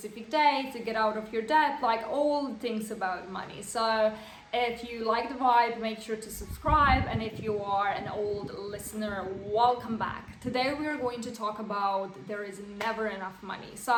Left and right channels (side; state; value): both; identical; correlation 1.00